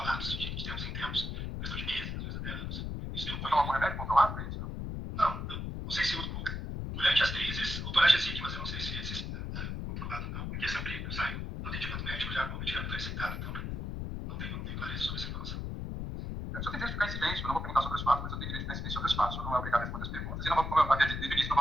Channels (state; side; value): noise; left; rumble, 4 dB below the sound